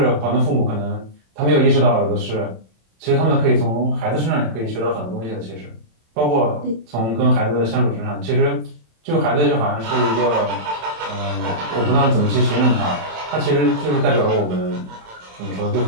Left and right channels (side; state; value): left; late; 27 ms